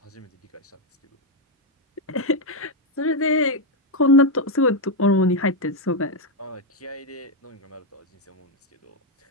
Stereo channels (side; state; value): both; normal; correlation 0.03